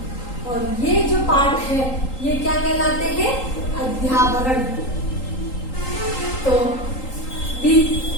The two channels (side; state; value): right; late; 3.8 ms